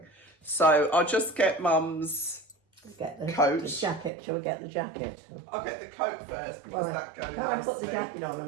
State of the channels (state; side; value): drops out; left; at 4.1 s